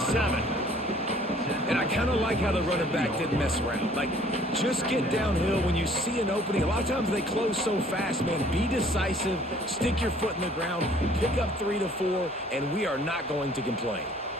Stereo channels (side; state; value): both; normal; correlation 0.56